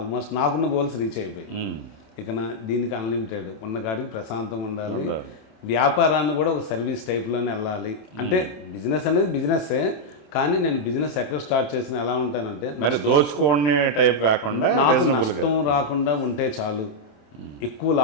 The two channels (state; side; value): late; right; 27 ms